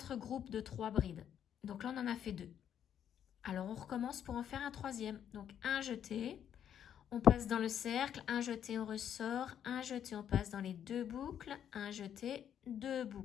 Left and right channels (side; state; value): right; quieter; 9.4 dB